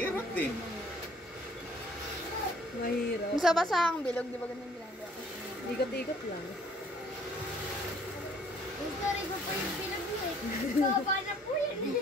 din. Mahirap. Sa basahang bilog, di ba ganun ginagawa? Ikot-ikot lang. Yung story ko po yung pinag-uwi. Baba na po yun.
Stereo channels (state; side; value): normal; both; correlation 0.59